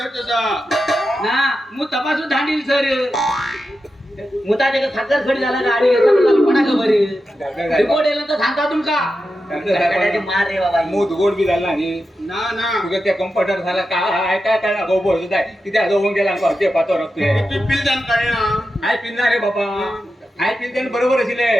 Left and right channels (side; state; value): both; normal; correlation 0.90